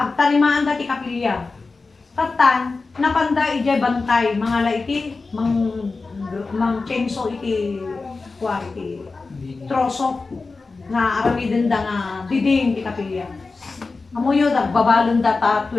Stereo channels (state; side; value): quieter; right; 3.9 dB